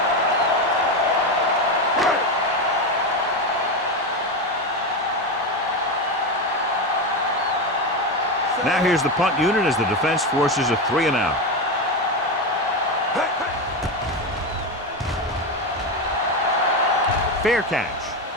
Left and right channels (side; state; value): both; normal; correlation 0.14